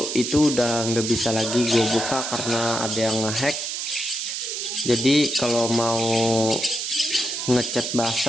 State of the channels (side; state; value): right; noise; hiss, 4 dB below the sound